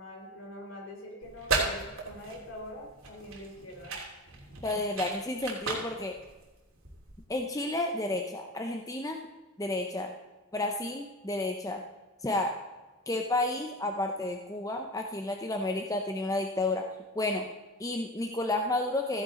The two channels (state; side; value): normal; both; correlation 0.31